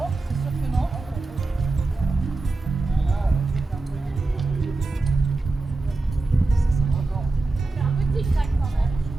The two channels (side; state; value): left; quieter; 3.3 dB